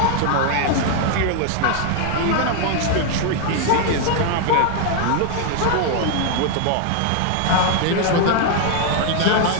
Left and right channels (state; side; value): different; both; correlation 0.00